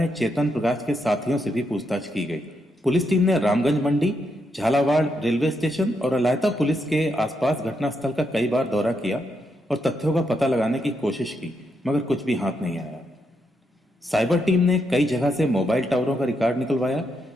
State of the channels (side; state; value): both; normal; correlation 0.81